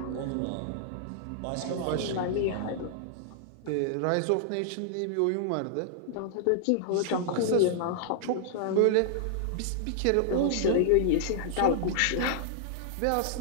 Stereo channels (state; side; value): different; both; correlation -0.01